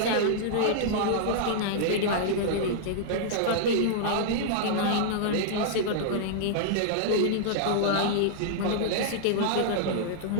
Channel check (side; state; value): both; different; correlation -0.01